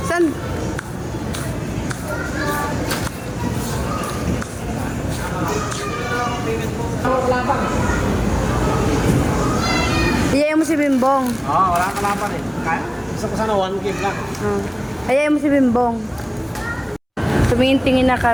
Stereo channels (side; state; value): both; identical; correlation 1.00